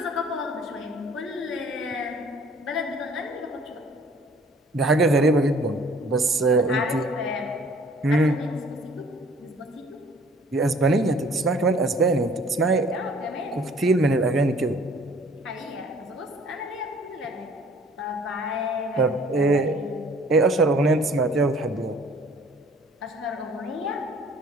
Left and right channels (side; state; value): both; normal; correlation 0.54